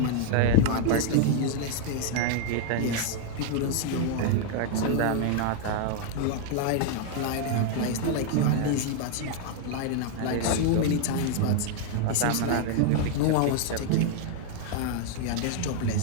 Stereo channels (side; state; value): both; different; correlation 0.00